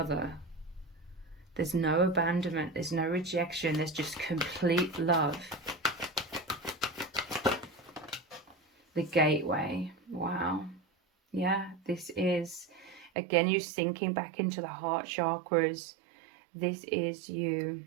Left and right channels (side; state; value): left; drops out; at 13.1 s